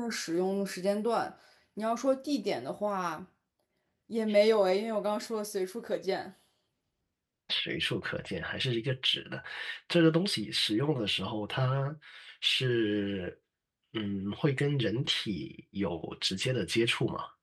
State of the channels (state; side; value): identical; both; correlation 1.00